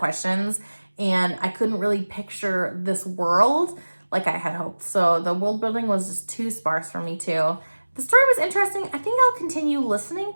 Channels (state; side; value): inverted; both; correlation -1.00